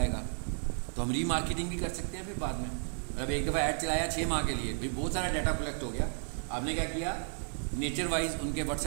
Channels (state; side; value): silent; left; 56 dB below the other